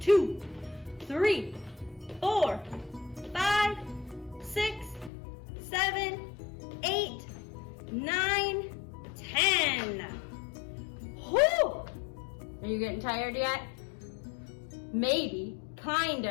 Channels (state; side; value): drops out; right; at 5.1 s